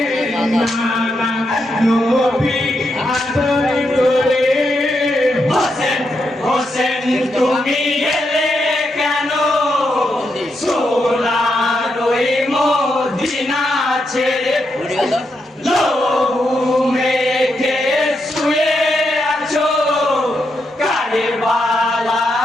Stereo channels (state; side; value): normal; both; correlation 0.82